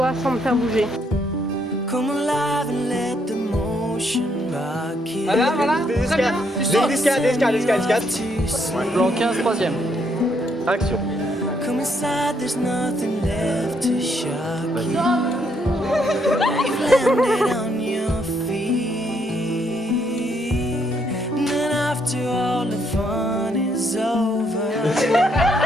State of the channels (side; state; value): both; normal; correlation 0.73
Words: sans me faire bouger. Voilà, voilà. Très bien. Tu sautes. Descade. Plan 15, troisième. Action. Come inside, there's nothing left to shock you. You've landed on your feet. And then after all the fun is over,